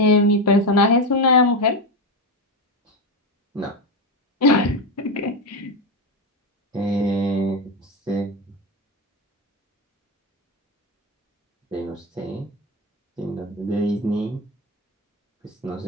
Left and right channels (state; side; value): normal; both; correlation 0.13